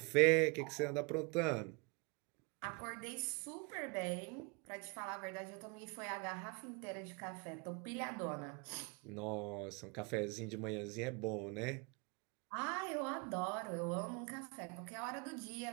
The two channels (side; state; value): left; quieter; 30.4 dB